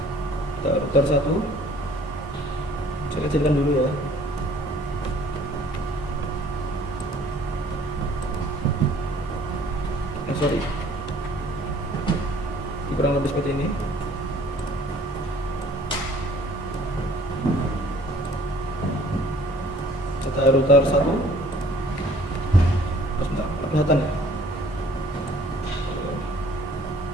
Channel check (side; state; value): both; normal; correlation 0.55